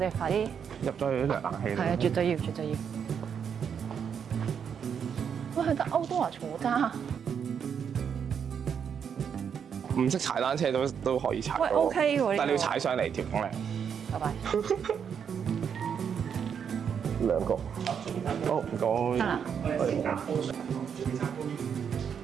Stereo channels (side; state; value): left; quieter; 7.5 dB